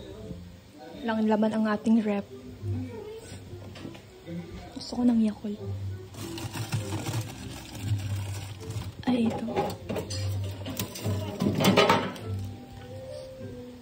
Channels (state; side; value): identical; both; correlation 1.00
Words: Lang laman ang ating rep. Gusto ko ng Yakult. Ay, ito.